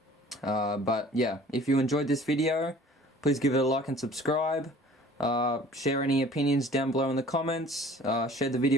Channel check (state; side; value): normal; both; correlation 0.48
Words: But yeah, if you enjoyed this video, please give it a like and subscribe. Share any opinions down below in the comments. Share the